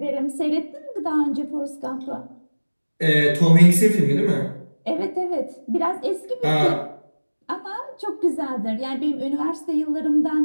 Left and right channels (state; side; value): inverted; both; correlation -1.00